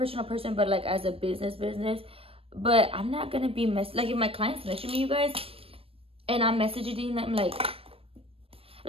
person, but, like, as a business. But I'm not going to be like, if my clients message me, you guys, and I'm messaging them, like,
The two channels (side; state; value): left; late; 0.28 ms